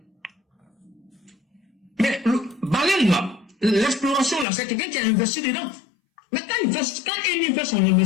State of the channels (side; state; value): right; drops out; at 4.5 s